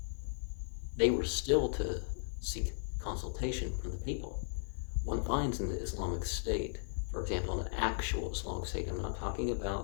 they were still to seek consultation from the people. One finds in the Islamic State, for example, an actual Islamic State, I'm not talking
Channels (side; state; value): right; silent; 54 dB below the other